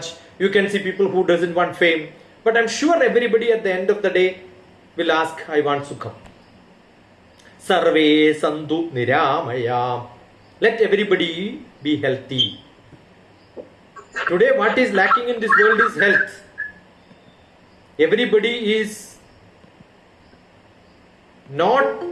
You can see people who doesn't want fame. But I'm sure everybody at the end of the day will ask, I want sukham. Sarve santu niramaya. Let everybody be healthy. Today what is lacking in this world is health. Everybody is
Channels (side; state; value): both; identical; correlation 1.00